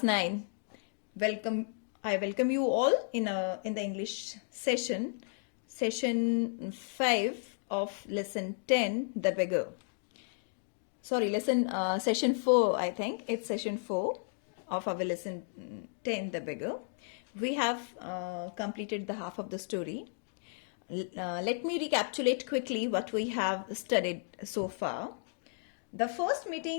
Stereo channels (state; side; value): silent; right; digital silence